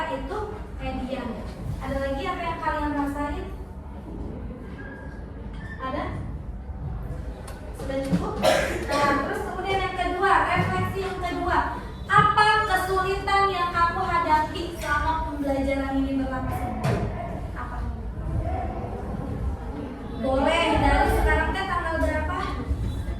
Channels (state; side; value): identical; both; correlation 1.00